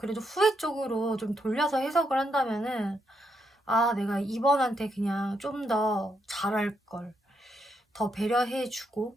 후회 쪽으로 좀 돌려서 해석을 한다면은 내가 이번한테 그냥 좀 더 잘할 걸. 더 배려해 주고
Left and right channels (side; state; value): both; normal; correlation 0.79